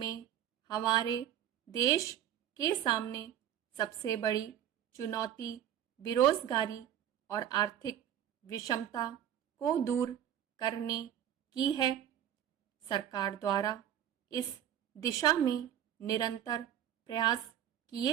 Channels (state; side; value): quieter; left; 10.7 dB